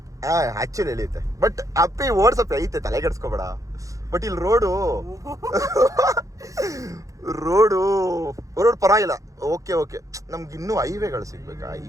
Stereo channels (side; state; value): left; late; 0.16 ms